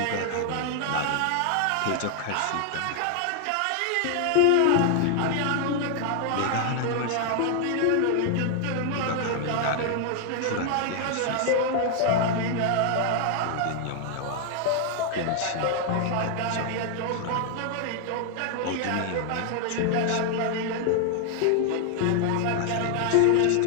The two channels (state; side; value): different; both; correlation 0.00